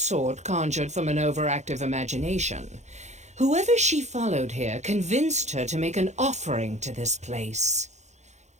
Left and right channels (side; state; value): left; late; 0.33 ms